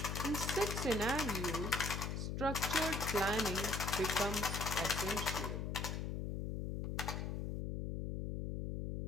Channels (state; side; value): noise; left; hum, 2 dB below the sound